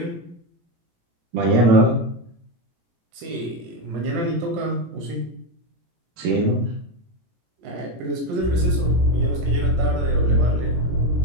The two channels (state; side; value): late; left; 17 ms